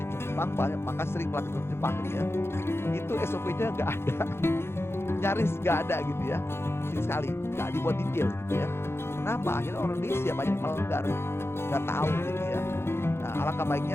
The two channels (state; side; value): late; right; 0.12 ms